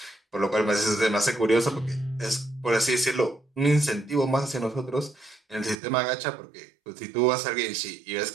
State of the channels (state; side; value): drops out; left; at 5.8 s